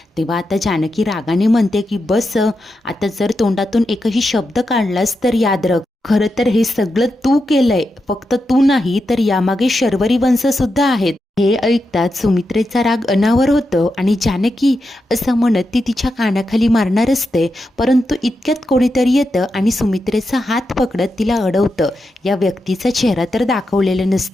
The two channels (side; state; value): both; normal; correlation 0.87